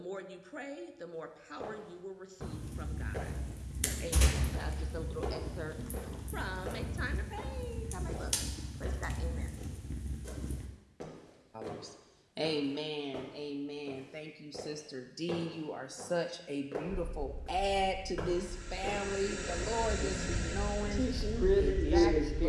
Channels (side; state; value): both; identical; correlation 1.00